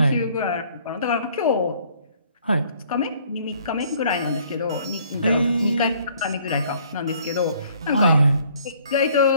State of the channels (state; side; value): inverted; both; correlation -0.60